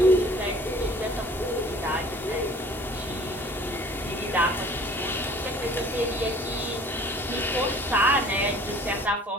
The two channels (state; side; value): normal; both; correlation 0.51